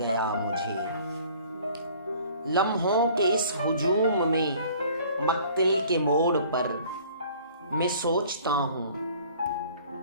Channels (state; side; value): inverted; both; correlation -0.52